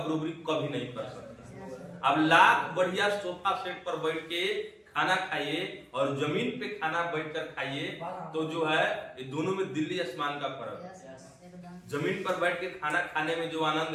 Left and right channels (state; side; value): identical; both; correlation 1.00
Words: कभी नहीं कर सकता। अब लाख बढ़िया सोफा सेट पर बैठ के खाना खाइए और जमीन पे खाना बैठकर खाइए, तो जो है ये दोनों में दिल्ली आसमान का फर्क है। जमीन पर बैठ के खाना खाने में जो